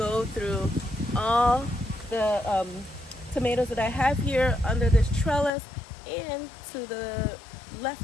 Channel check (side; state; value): right; drops out; at 5.5 s